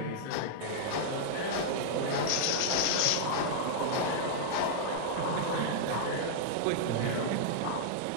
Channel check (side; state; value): both; different; correlation -0.01